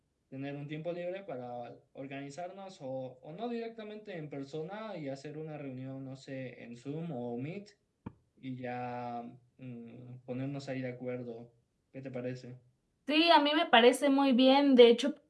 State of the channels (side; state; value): both; identical; correlation 1.00